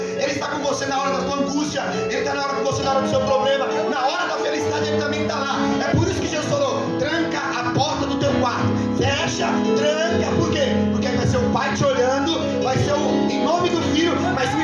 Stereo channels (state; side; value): identical; both; correlation 1.00